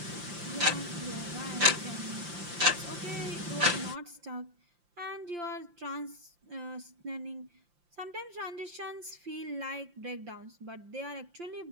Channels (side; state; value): left; late; 5.8 ms